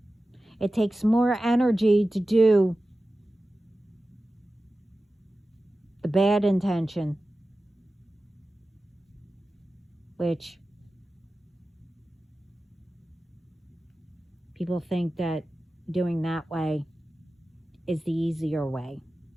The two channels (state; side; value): normal; both; correlation 0.95